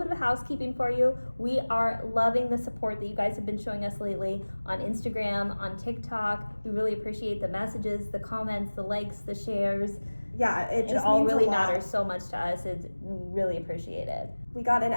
of housekeeping for you. We are loving the support that you guys have been showing us lately on Instagram, on TikTok. We really appreciate the messages, the comments, the likes, the shares. Yeah, it all really matters so much to us. It's really appreciated. We got an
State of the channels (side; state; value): both; inverted; correlation -1.00